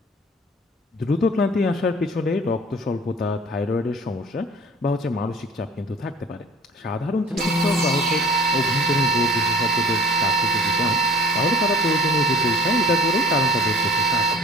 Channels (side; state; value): both; normal; correlation 0.46